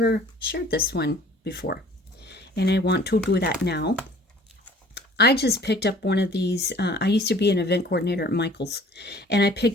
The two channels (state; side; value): normal; both; correlation 0.51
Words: shared this one before, and I want to do that now. I just picked up one of these. I used to be an event coordinator at Michael's, and I